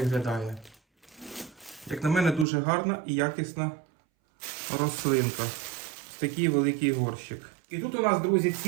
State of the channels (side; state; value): left; drops out; at 2.5 s